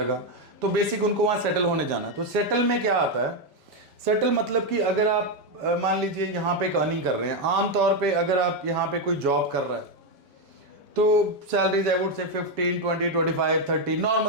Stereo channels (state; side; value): late; left; 5.1 ms